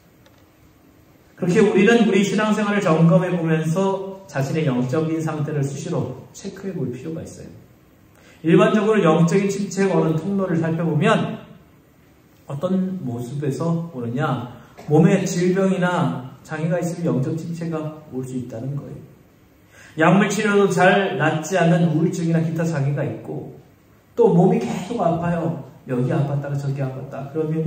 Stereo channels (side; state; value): both; identical; correlation 1.00